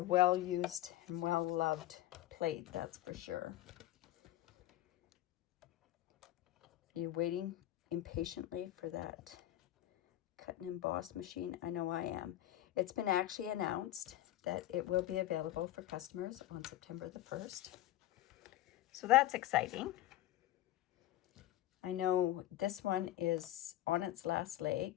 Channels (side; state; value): right; quieter; 14.2 dB